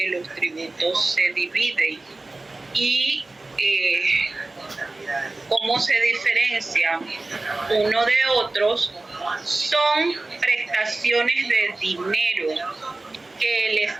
los tributos se dividen y cómo se diferencian uno de otros. Son prestaciones de dinero que el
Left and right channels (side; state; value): left; quieter; 3.1 dB